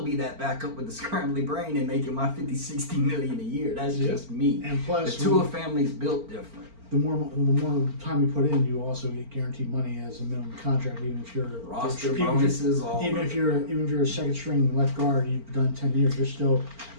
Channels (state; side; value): late; left; 4.4 ms